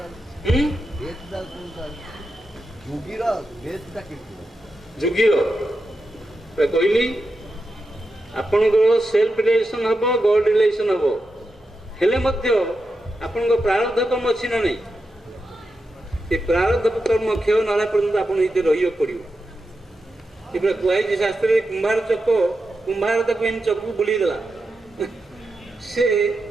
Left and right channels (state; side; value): normal; both; correlation 0.88